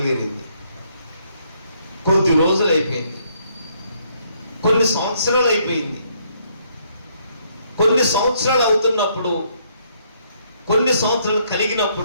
కొద్ది రోజులు అయిపోయింది, కొన్ని సంవత్సరాలు అయిపోయింది. కొన్ని సంవత్సరాలు అవుతున్నప్పుడు, కొన్ని సంవత్సరాలు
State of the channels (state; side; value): inverted; both; correlation -0.70